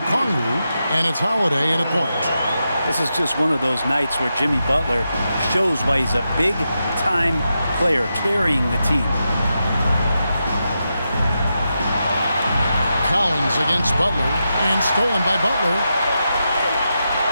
and it's Holiday in a point. This is just one of those nights where Jimmy Butler shows why he's a big-time player carrying the team. Collins against Butler, and stolen by Butler.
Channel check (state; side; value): inverted; both; correlation -0.87